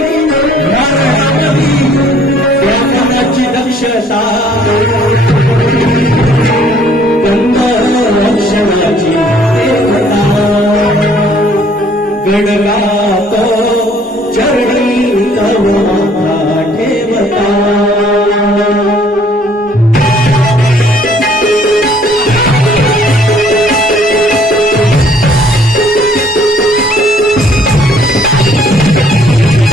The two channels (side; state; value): both; normal; correlation 0.60